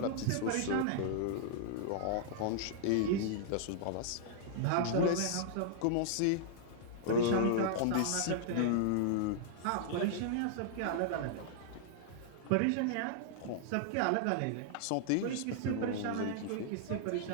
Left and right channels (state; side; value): different; both; correlation -0.01